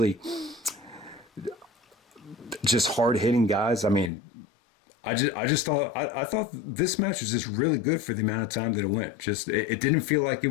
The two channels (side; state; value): right; drops out; at 4.1 s